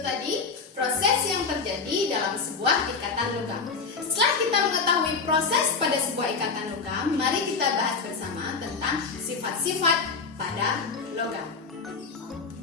proses yang terjadi dalam sebuah ikatan logam. Setelah kita mengetahui proses pada sebuah ikatan logam, mari kita bahas bersama tentang sifat-sifat pada logam.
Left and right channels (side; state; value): right; quieter; 4.8 dB